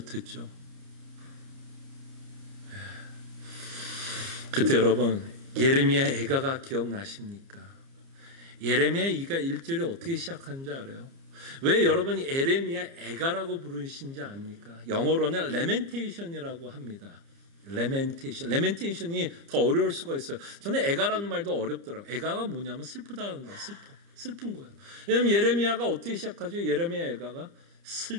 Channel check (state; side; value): late; left; 30 ms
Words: 그때 여러분, 예레미야 애가가 기억나십니까? 예레미야 2가 1절이 어떻게 시작하는지 알아요? 왜 여러분이 예레미야 애가라고 부르신지 압니까? 영어로는 레멘테이션이라고 합니다. 레멘테이션이 더 어려울 수가 있어요. 저는 애가라는 말도 어렵더라고요. 애가가 뭐냐면 슬프다는 거예요. 슬픈 거예요. 왜냐하면 예레미야가 어떻게 시작하죠? 예레미야 애가가